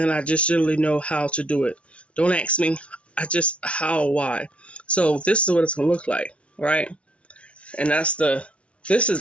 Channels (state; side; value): late; right; 0.061 ms